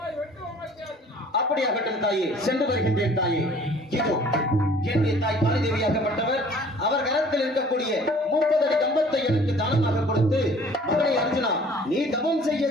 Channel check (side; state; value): both; normal; correlation 0.52